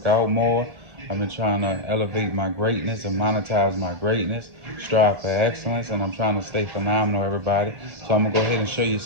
out more. I've been trying to elevate my greatness and monetize my greatness, strive for excellence, and I'm trying to stay phenomenal, everybody. So I'm going to go ahead and show you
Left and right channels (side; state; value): left; late; 1.6 ms